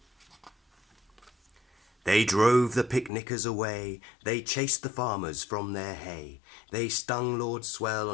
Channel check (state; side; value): drops out; right; at 3.1 s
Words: They drove the picnickers away, they chased the farmers from their hay, they stung Lord Swell